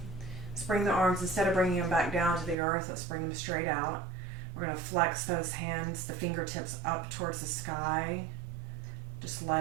Let's bring the arms, instead of bringing them back down to the earth, let's bring them straight out. We're going to flex those hands, the fingertips up towards the sky. Just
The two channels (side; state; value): left; drops out; at 2.6 s